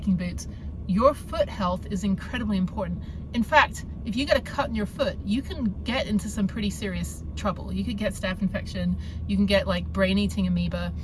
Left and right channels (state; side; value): identical; both; correlation 1.00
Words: boots, your foot health is incredibly important. In fact, if you get a cut in your foot, you can get into some pretty serious trouble. You could get staph infection, you can get like brain-eating amoeba.